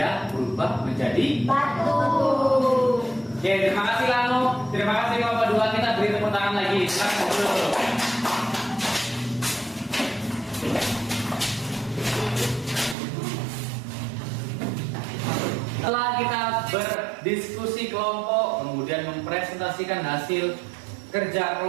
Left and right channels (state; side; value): drops out; left; at 13.0 s